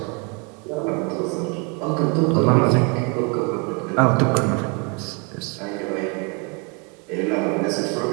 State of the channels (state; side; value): quieter; left; 33.0 dB